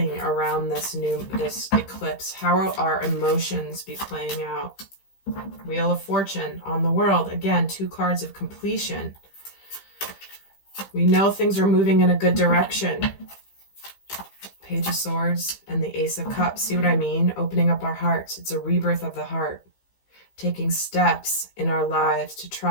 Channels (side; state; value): right; late; 15 ms